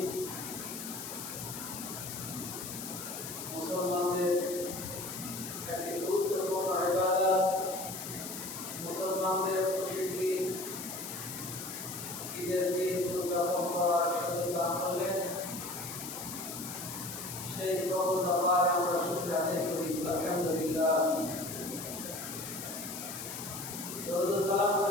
মুসলমানদের একটি গুরুত্বপূর্ণ ইবাদত, মুসলমানদের প্রসিদ্ধি ঈদের দিন উদযাপন করার সুযোগ দান করলেন। সেই প্রভুর দরবারে আমরা শুকরিয়া আদায় করি। আলহামদুলিল্লাহ। দরুদ ও সালাম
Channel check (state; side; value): noise; left; hiss, 8 dB below the sound